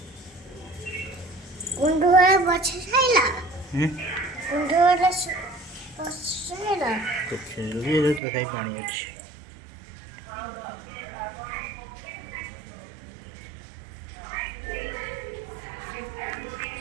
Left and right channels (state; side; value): drops out; left; at 8.2 s